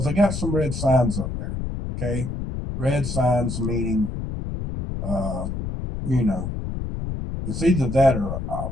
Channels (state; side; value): noise; left; rumble, 5 dB below the sound